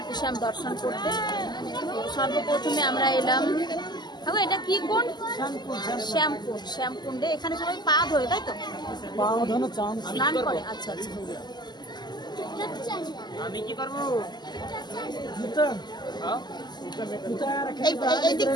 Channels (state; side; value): late; right; 0.21 ms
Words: শ্যাম দর্শন করতে। সর্বপ্রথমে আমরা এলাম, এটা কি কুণ্ড? শ্যামকুণ্ডে। এখানে সবাই পা ধোয়, তাই তো? স্নান করে। আচ্ছা আচ্ছা। আমি কি করবো? এই দিক